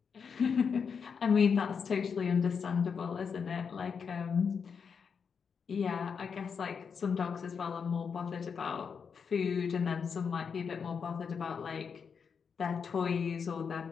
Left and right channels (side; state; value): right; quieter; 6.2 dB